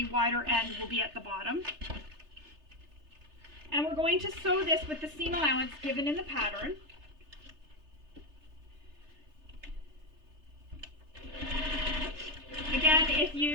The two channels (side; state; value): left; late; 3.3 ms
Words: wider end will be at the bottom. And we're going to sew this with the seam allowance given in the pattern. Again, if